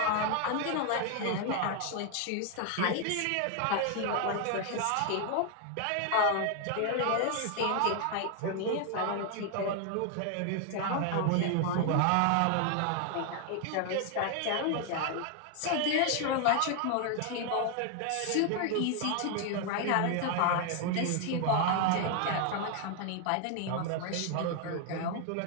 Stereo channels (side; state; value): both; different; correlation 0.00